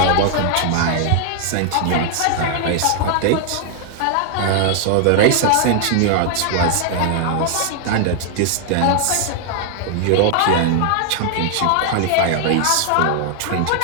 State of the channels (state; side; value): different; both; correlation 0.00